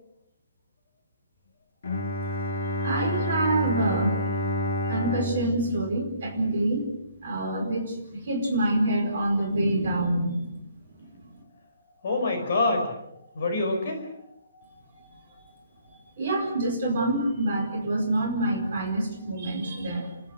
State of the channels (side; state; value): both; inverted; correlation -0.59